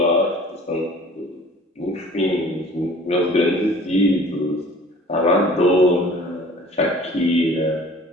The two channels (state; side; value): normal; both; correlation 0.48